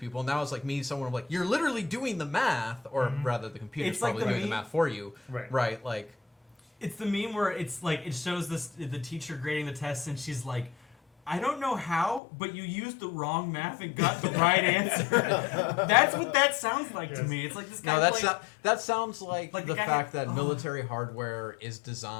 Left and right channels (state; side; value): drops out; right; at 12.2 s